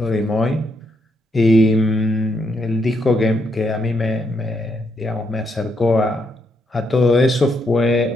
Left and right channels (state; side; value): normal; both; correlation 0.77